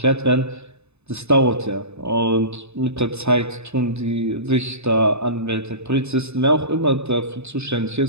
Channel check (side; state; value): left; late; 0.80 ms